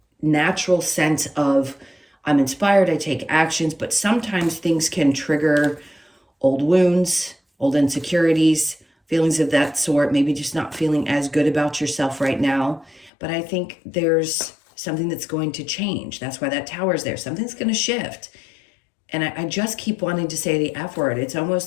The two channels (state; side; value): drops out; right; at 13.1 s